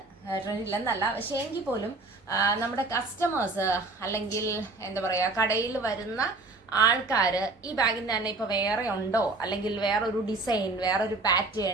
ട്രെൻഡ് ഇല്ലെന്നല്ല. പക്ഷേ എങ്കിൽ പോലും നമ്മുടെ കസ്റ്റമേഴ്സ് അല്ലെങ്കിൽ എന്താ പറയുക, കടയിൽ വരുന്ന ആൾക്കാർ ഈ ബാഗിന് തന്നെ ഇപ്പോൾ വേറെ ഉണ്ടോ, അല്ലെങ്കിൽ വേറൊരു ഡിസൈൻ, വേറൊരു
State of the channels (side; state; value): left; quieter; 3.4 dB